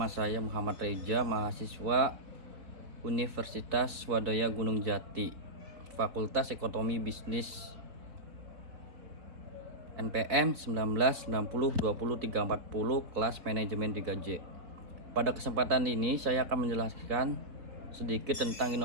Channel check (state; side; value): late; left; 3.9 ms